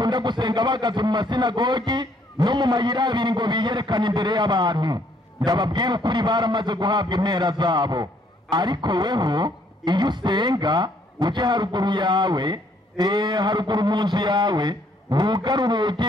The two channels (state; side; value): normal; both; correlation 0.66